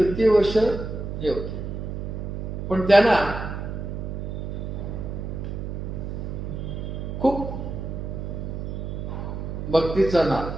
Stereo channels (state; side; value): noise; right; hum, 5 dB below the sound